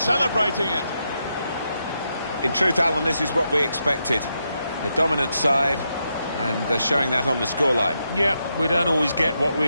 it. In truth, Alan, this is what we expected. The dominant side, and they're showing that on the scoreline. Yeah, we don't always get what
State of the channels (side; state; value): both; inverted; correlation -0.83